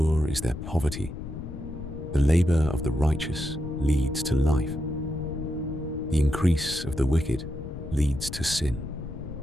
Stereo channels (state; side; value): noise; left; rumble, 9 dB below the sound